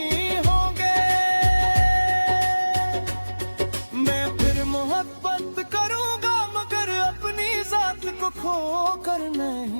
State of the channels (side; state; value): both; inverted; correlation -1.00